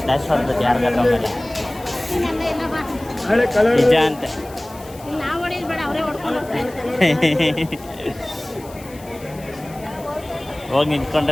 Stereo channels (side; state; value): left; noise; hiss, 21 dB below the sound